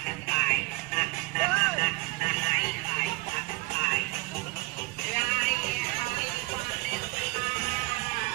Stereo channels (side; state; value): left; quieter; 23.4 dB